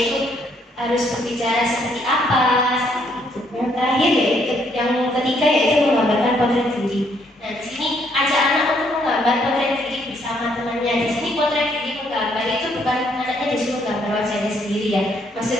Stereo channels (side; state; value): both; normal; correlation 0.69